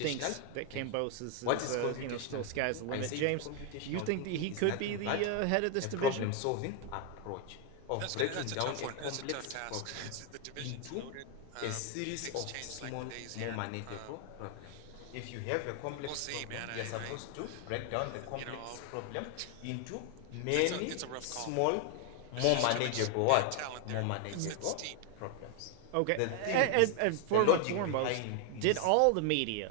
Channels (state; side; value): different; both; correlation 0.00